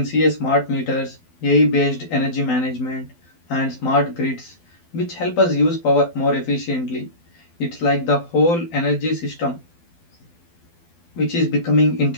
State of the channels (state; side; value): late; right; 12 ms